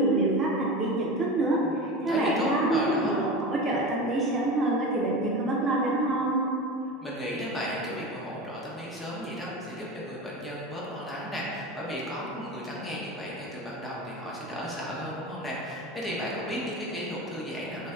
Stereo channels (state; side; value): normal; both; correlation 0.28